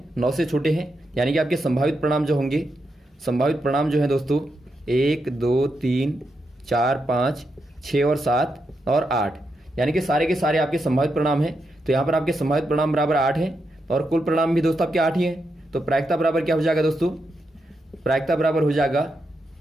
9 से छोटे हैं, यानी कि आपके संभावित परिणाम जो होंगे, संभावित परिणाम जो है दोस्तों 1 2 3 4 5 6 और 7 और 8, यानी कि सारे के सारे आपके संभावित परिणाम हैं। तो यहाँ पर आपके संभावित परिणाम बराबर 8 है और कुल परिणाम भी दोस्तों आपके 8 ही हैं। तो प्रायिकता बराबर क्या हो जाएगा दोस्तों, प्रायिकता बराबर हो जाएगा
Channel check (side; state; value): both; normal; correlation 0.84